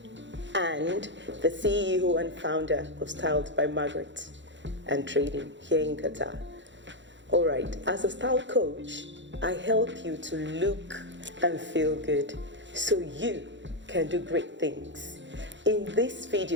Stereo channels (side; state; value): left; late; 0.53 ms